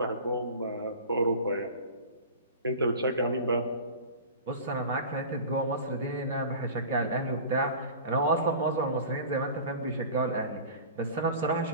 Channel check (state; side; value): inverted; both; correlation -0.37